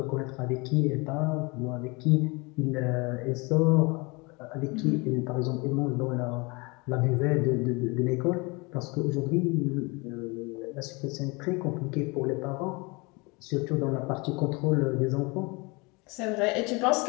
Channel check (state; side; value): quieter; right; 27.4 dB